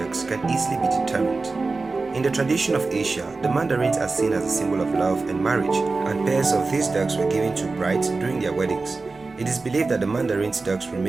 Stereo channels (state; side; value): quieter; left; 3.8 dB